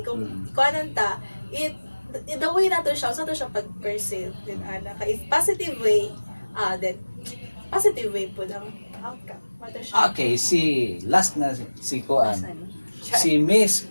kung kuanan ta, the way nato siya, sa to siya pag-perceive din ana. If positive way, then positive way po ang outcome. Mato siya. Okay, last na si Kuan. Si Miss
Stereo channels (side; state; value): both; inverted; correlation -1.00